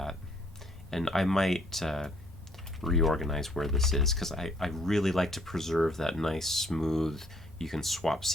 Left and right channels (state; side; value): normal; both; correlation 0.65